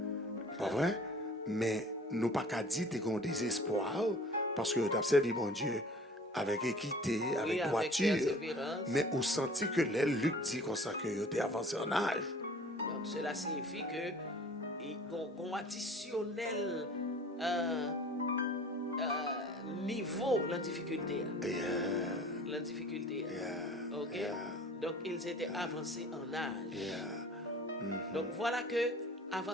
pas vrai, mais nous pas qu'à dire qu'ils ont désespoir parce que tu as servi mon Dieu avec équité, avec droiture, mais on sentit que les Luc dit comme ça que tu es avancé en âge. Donc cela signifie que qu'on additionnel niveau la difficulté. La difficulté. OK? Donc ils étaient avancés en âge. Donc voilà que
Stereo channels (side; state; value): both; normal; correlation 0.47